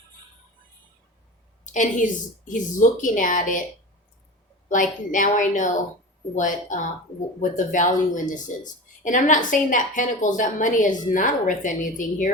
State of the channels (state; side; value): normal; both; correlation 0.31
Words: and he's looking at it like, now I know what the value in this is. And I'm not saying that pentacles, that money is not worth anything